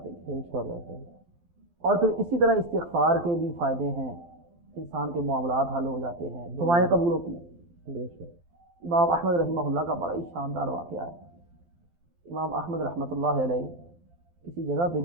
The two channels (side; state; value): left; late; 12 ms